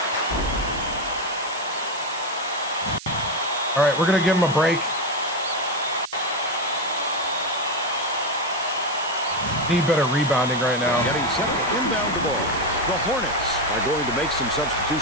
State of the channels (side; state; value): right; noise; hiss, 14 dB below the sound